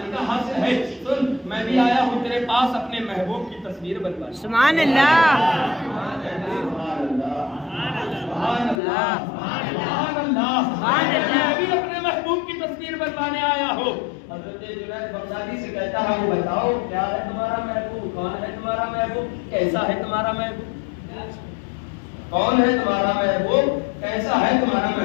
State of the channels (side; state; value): right; drops out; at 8.8 s